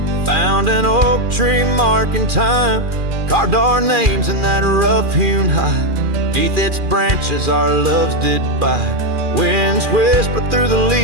found an oak tree marking time, carved our names in that rough-hewn hide. Beneath its branches our loves did bide. Winds whispered through the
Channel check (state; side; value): late; left; 2.4 ms